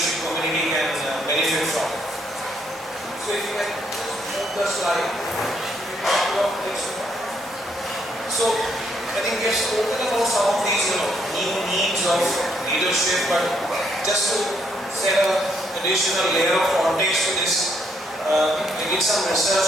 community can benefit from. So if you can move the slide. So I think we have spoken about some of these new needs of leadership, but just to set an additional layer of context to this, I did some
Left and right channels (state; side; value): normal; both; correlation 0.72